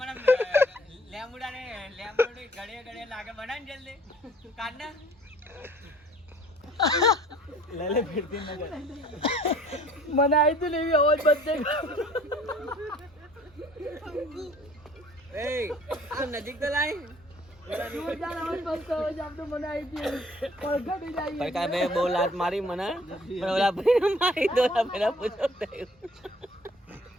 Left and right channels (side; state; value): both; normal; correlation 0.54